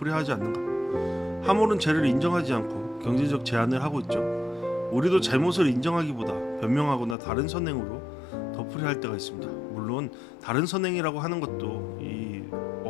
하지 않는가? 하물은 죄를 인정하지 않고 경제적 제한을 하고 있죠. 우리도 잘못을 인정하기보다 변명하거나 다른 선행으로 덮으려 할 때가 있습니다. 물론 다른 선행이라고 하는 것도 이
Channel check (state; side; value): drops out; right; at 7.2 s